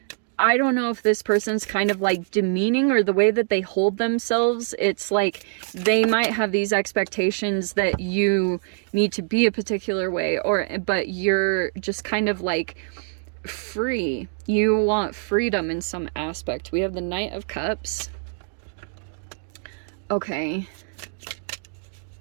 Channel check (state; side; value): silent; left; digital silence